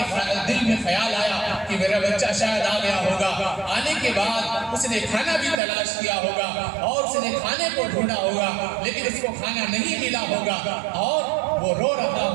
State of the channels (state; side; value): drops out; left; at 5.6 s